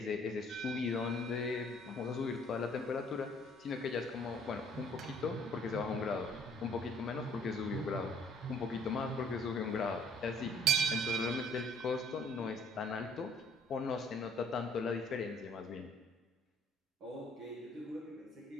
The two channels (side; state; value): both; normal; correlation 0.59